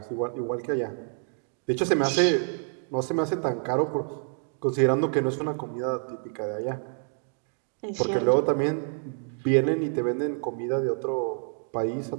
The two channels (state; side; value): silent; left; 60 dB below the other